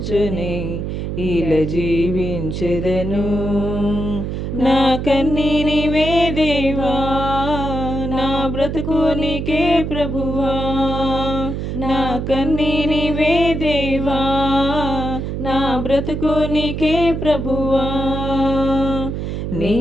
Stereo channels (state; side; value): noise; right; hum, 4 dB below the sound